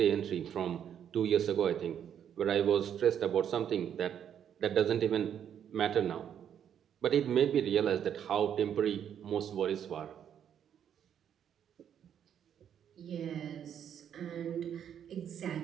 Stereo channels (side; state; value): left; quieter; 9.0 dB